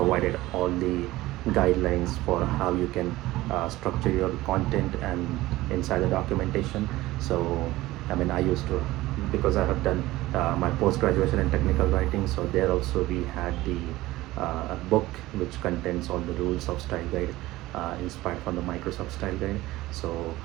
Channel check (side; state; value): left; quieter; 17.7 dB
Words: all the guidelines for how you can structure your content and inside the documentation. So I mean, I used to, because I have done my post-graduation in technical writing, so there also we had the book which contains all the rules of style guide, inspired from the Microsoft style guide. So